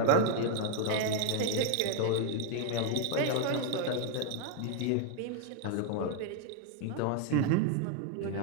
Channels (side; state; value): both; different; correlation 0.00